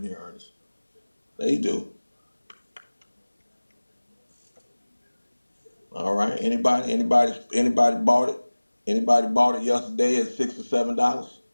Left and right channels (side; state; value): both; inverted; correlation -1.00